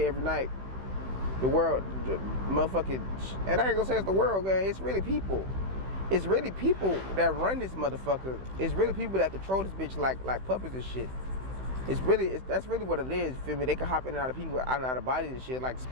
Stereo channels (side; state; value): left; late; 16 ms